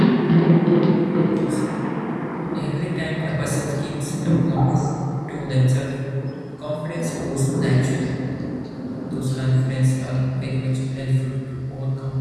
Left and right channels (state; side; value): identical; both; correlation 1.00